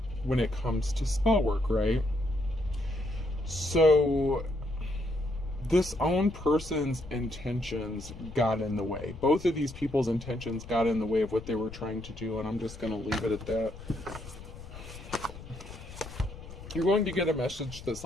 when it comes to spell work, right? So this own person's intentions got in the way. Both of these people's intentions got in the way of what they were trying to do, and I'm just going to leave it at that. You're going to get a message that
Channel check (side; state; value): left; noise; rumble, 14 dB below the sound